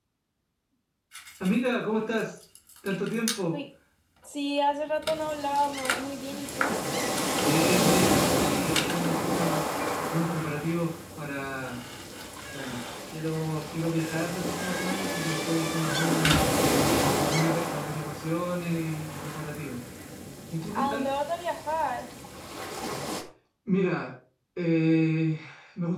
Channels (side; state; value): both; identical; correlation 1.00